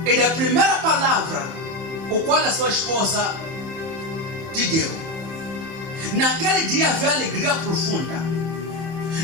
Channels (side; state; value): left; late; 31 ms